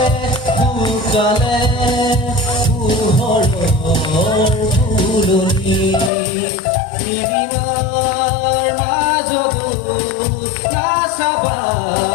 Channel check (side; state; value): right; drops out; at 6.1 s